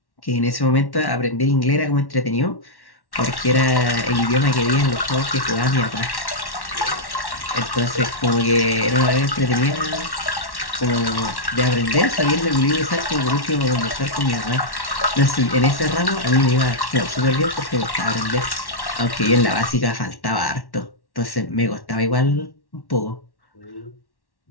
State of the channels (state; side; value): late; right; 1.1 ms